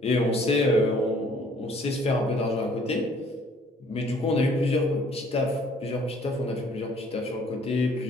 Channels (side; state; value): both; normal; correlation 0.59